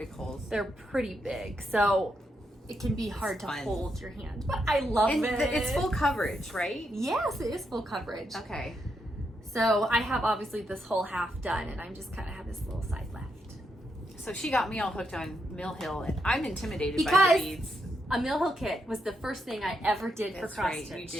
holes. They're pretty big. So it can be hard to hold your hand. But I love it. It's full coverage, right? Yes, it is full coverage. Okay. So I have obviously this whole half done and I'm just kind of have this little side left. So she got me all hooked on Mill Hill, and I'm intimidated by Because the beads. a Mill Hill kit was the first thing I ever did for That's cross right, stitch. you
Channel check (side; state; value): both; normal; correlation 0.81